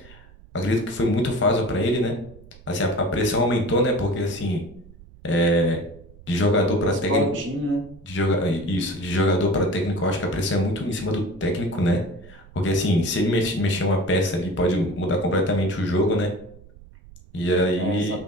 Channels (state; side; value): noise; right; rumble, 22 dB below the sound